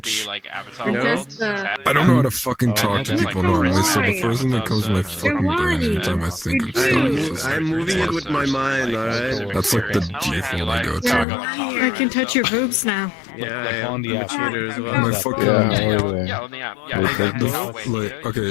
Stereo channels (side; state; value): right; drops out; at 11.2 s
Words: Just, I don't know how to fucking talk to people normally, so the first thing that comes to my fucking brain every time I think of stuff is just I'm moving it with my mind, alright? that's like the default I go to. I can touch your boobs now. Yeah, I'm a cheater as well. My fucking Yeah, how are they? like, okay,